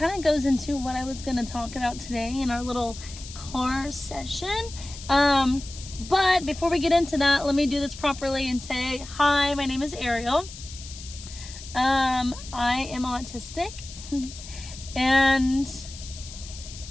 of goes into what I was going to talk about today in our little car session. But before we get into that, let me do this properly and say, hi, my name is Ariel. I am autistic, and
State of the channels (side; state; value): left; noise; hiss, 14 dB below the sound